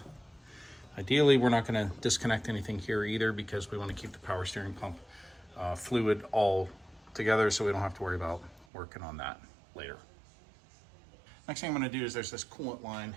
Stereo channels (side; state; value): left; drops out; at 8.7 s